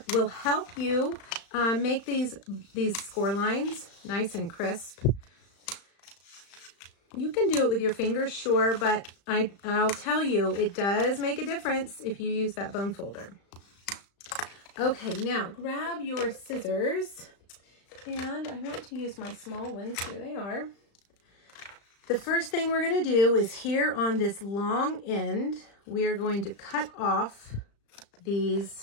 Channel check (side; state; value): right; late; 35 ms